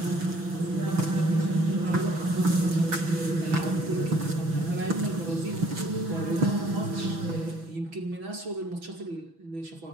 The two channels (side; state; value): left; late; 6.1 ms